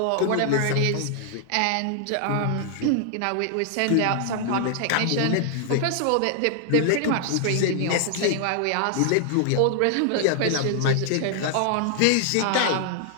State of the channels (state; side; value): different; both; correlation 0.00